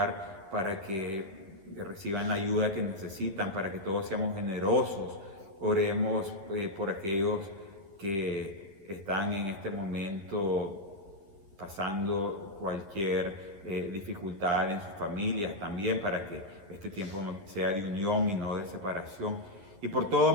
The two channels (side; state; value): left; late; 10 ms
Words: para que reciban la ayuda que necesitan, para que todos seamos generosos. Oremos por aquellos que están en este momento pasando cualquier dificultad en sus familias también, para que este tiempo sea de unión y no de separación. Y por todo